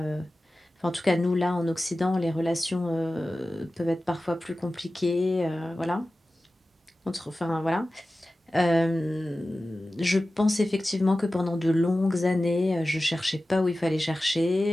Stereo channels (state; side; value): normal; both; correlation 0.95